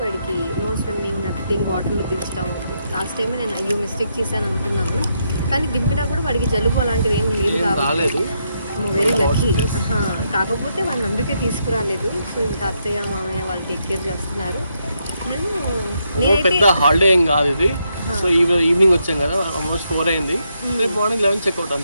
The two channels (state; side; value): inverted; both; correlation -0.79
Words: వాడికి నో స్విమ్మింగ్, నథింగ్, వాటర్లో దించడం. లాస్ట్ టైమే నేను అయ్యో మిస్టేక్ చేశాను అనుకున్నాను, కానీ దింపినా కూడా వాడికి జలుబు అలాంటిది ఏం లేదు కాబట్టి వెరీ లక్కీ. కాకపోతే వాళ్ళని అందుకే తీసుకురాలేదు. సో ఇంకా అత్తయ్య మామయ్య వాళ్ళు టేక్ కేర్ చేస్తున్నారు. పెద్ద హాలిడే ఏం కాదు ఇది. సో ఈవినింగ్ వచ్చాం కదా, ఆల్మోస్ట్ 4 అయింది. రేపు మార్నింగ్ 11 చెక్అవుట్